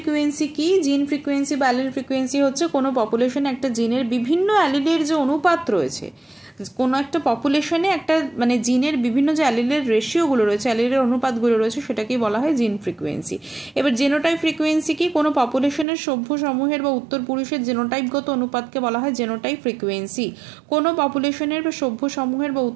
কি? জিন ফ্রিকুয়েন্সি বা অ্যালিল ফ্রিকুয়েন্সি হচ্ছে কোনো পপুলেশনে একটা জিনের বিভিন্ন অ্যালিলের যে অনুপাত রয়েছে, কোনো একটা পপুলেশনে একটা জিনের বিভিন্ন যে অ্যালিলের রেশিওগুলো রয়েছে, অ্যালিলের অনুপাতগুলো রয়েছে, সেটাকেই বলা হয় জিন ফ্রিকুয়েন্সি। এবার জেনোটাইপ ফ্রিকুয়েন্সি কি? কোনো পপুলেশনের সভ্য সমূহের বা উত্তর পুরুষের জেনোটাইপগত অনুপাতকে বলা হয় জেনোটাইপ ফ্রিকুয়েন্সি। কোনো পপুলেশনের বা সভ্য সমূহের বা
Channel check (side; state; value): left; drops out; at 15.9 s